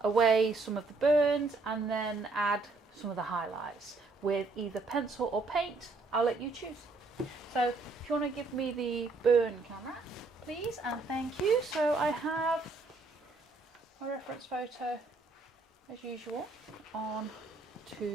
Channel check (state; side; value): quieter; left; 3.6 dB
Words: some of the burns and then add some of the highlights with either pencil or paint. I'll let you choose. So if you want to give me the burn camera, please, and thank you. So I have a reference photo as usual on